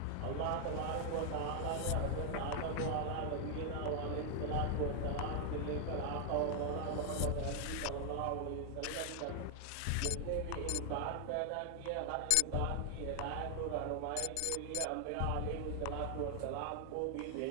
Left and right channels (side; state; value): both; different; correlation 0.00